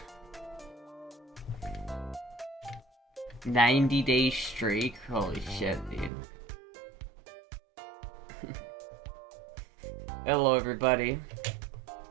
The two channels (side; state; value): left; drops out; at 6.1 s